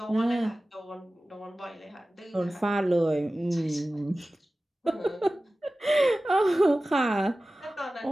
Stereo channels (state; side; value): normal; both; correlation 0.96